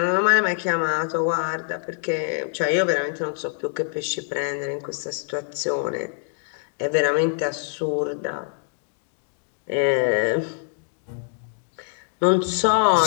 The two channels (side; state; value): right; silent; 62 dB below the other